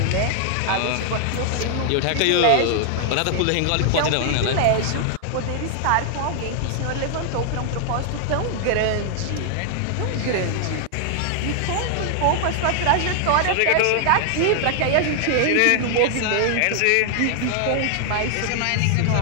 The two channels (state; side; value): different; both; correlation 0.00